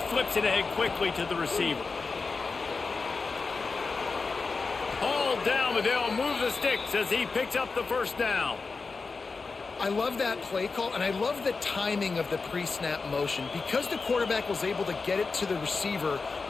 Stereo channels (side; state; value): right; quieter; 4.4 dB